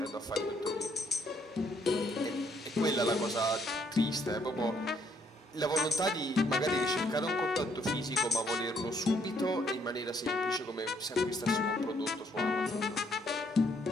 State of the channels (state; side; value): normal; both; correlation 0.70